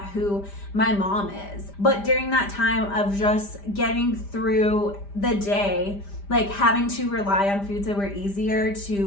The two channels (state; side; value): late; right; 5.0 ms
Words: who my mom is. But during that time of just getting through the day, having to rely on foods that were easier